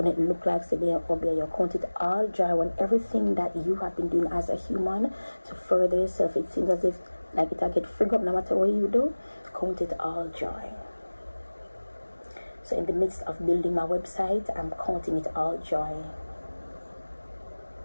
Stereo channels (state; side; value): inverted; both; correlation -1.00